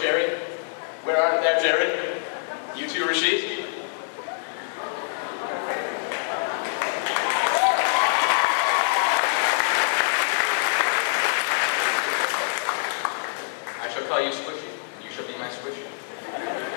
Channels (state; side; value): silent; right; digital silence